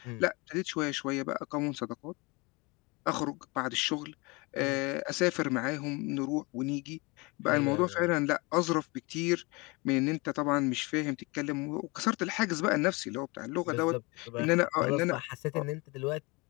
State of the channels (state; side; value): quieter; right; 26.5 dB